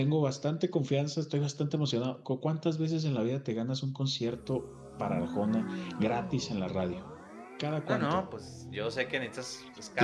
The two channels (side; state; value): both; identical; correlation 1.00